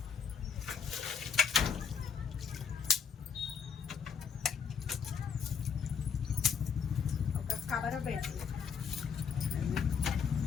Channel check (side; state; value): right; quieter; 6.7 dB